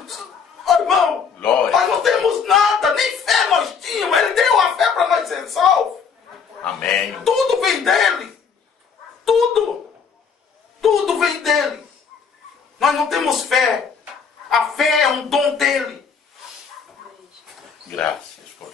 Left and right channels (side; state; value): right; quieter; 6.1 dB